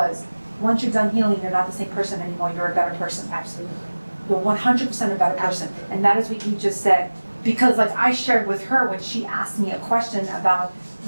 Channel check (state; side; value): inverted; both; correlation -1.00